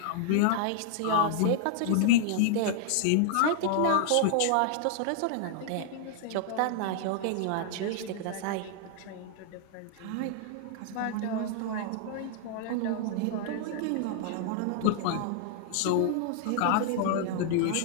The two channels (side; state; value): both; different; correlation 0.00